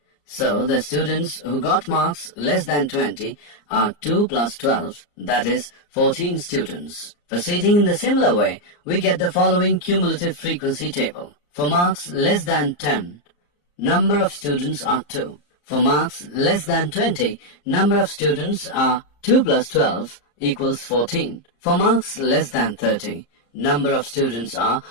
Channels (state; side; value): late; right; 34 ms